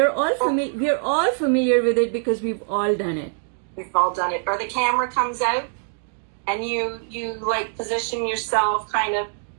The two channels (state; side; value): silent; left; 63 dB below the other